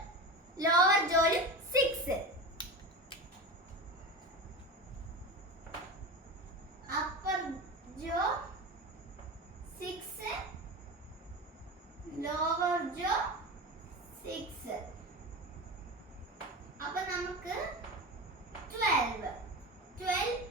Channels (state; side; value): normal; both; correlation 0.26